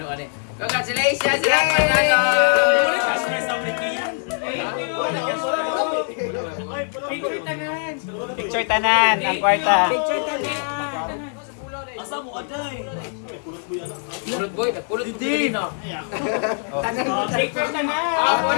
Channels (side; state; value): right; silent; 55 dB below the other